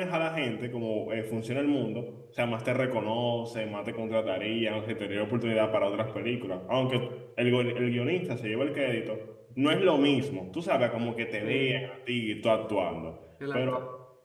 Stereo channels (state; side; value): identical; both; correlation 1.00